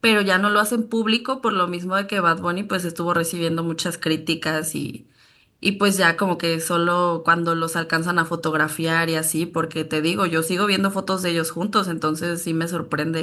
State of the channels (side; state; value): both; identical; correlation 1.00